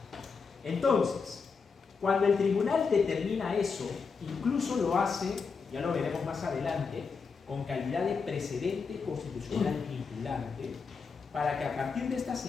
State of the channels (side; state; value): right; quieter; 5.3 dB